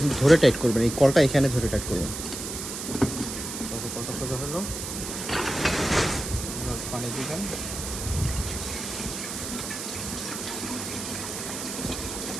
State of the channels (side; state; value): right; noise; hiss, 6 dB below the sound